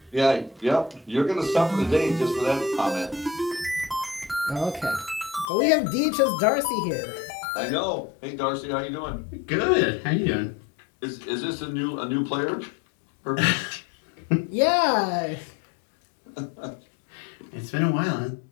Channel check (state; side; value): drops out; right; at 5.5 s